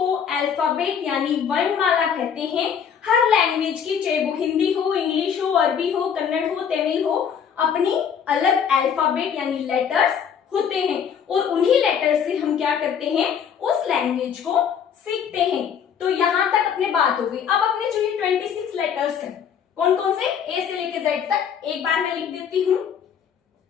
अल्फाबेट यानी वर्णमाला कहते हैं। हर लैंग्वेज की, चाहे वो हिंदी हो, इंग्लिश हो, अरबी हो, कन्नड़ हो, तमिल हो, अपनी अलग अल्फाबेट यानी लेटर्स होते हैं। और उन्हीं लेटर से हम क्या करते हैं? उस लैंग्वेज को सीखते हैं। तो यहां तक अपने बात हो गई। अब अपने जो ये 26 लेटर्स हैं, कौन कौन से? ए से लेके जेड तक। एक बार मैं लिख देती हूँ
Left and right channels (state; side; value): quieter; right; 7.6 dB